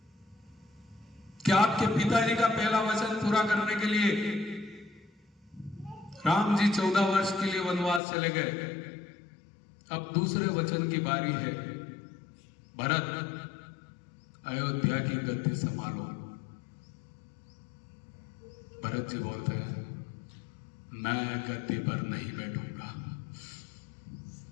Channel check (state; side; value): drops out; right; at 8.0 s